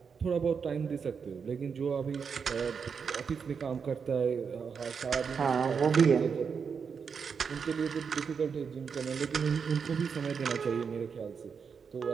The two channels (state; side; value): quieter; left; 6.1 dB